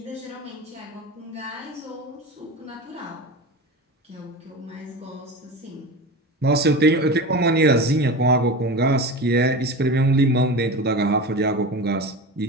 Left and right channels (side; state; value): both; normal; correlation 0.28